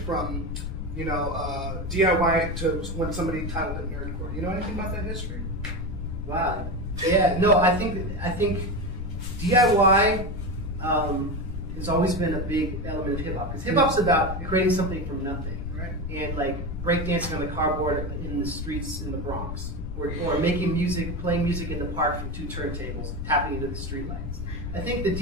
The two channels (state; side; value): noise; left; rumble, 5 dB below the sound